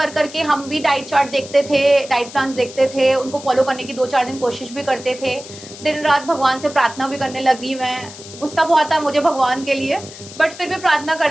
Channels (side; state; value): left; noise; hiss, 16 dB below the sound